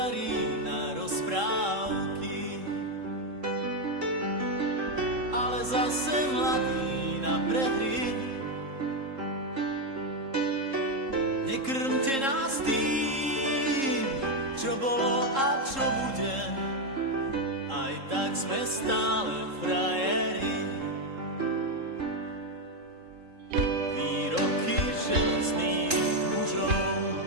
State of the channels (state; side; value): late; left; 3.7 ms